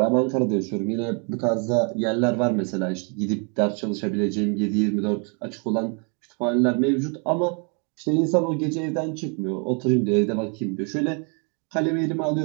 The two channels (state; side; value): quieter; left; 37.4 dB